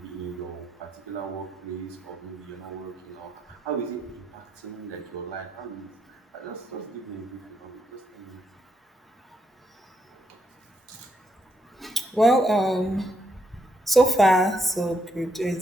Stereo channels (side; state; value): both; normal; correlation 0.77